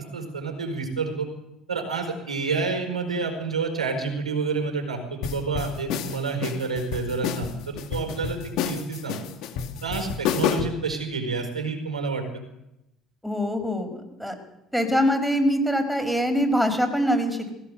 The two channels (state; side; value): normal; both; correlation 0.40